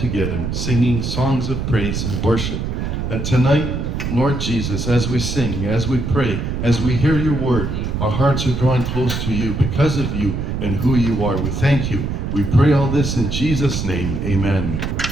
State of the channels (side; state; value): right; noise; rumble, 2 dB below the sound